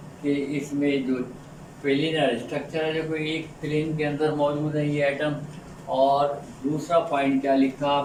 कि इसमें जो प्लेनर स्ट्रक्चर है, जो कोई एक प्लेन के अंदर मौजूद है ये एटम। और दूसरा पॉइंट क्या लिखा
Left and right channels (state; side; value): identical; both; correlation 1.00